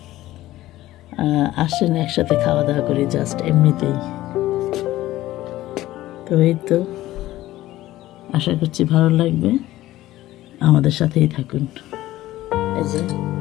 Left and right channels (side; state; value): right; quieter; 15.6 dB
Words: আসেন একসাথে খাওয়া দাওয়া করি, জাস্ট এমনিতেই। তো এই তো, আশা করছি ভালো লাগবে, আমাদের সাথেই থাকুন। এই যে